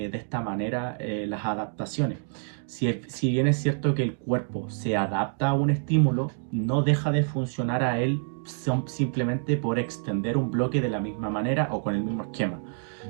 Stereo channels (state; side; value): silent; left; digital silence